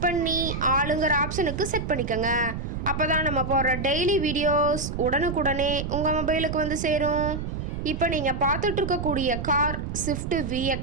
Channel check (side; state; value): right; noise; rumble, 5 dB below the sound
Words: பண்ணி ஆளுங்கிற ஆப்ஷனுக்கு செட் பண்ணிக்கோங்க. அப்போ தான் நம்ம போடுற டெய்லி வீடியோஸ் உடனுக்குடனே உங்கள் மொபைலுக்கு வந்து சேரும். இப்போ நீங்கள் பார்த்துட்ருக்கக்கூடிய கார் ஸ்விஃப்ட்